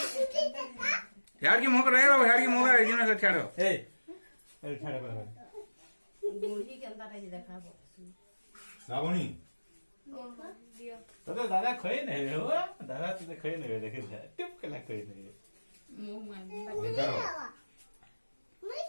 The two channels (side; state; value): both; inverted; correlation -1.00